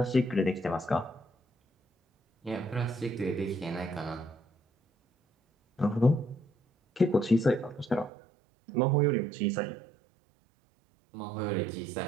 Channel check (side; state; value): left; drops out; at 8.1 s